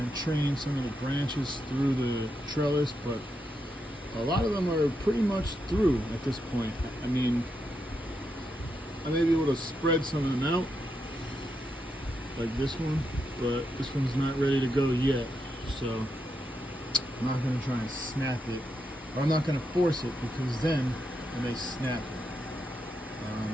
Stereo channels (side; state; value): both; normal; correlation 0.83